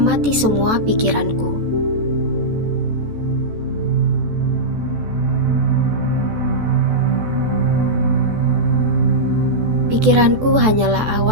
semua pikiranku. Pikiranku hanyalah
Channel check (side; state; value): left; late; 14 ms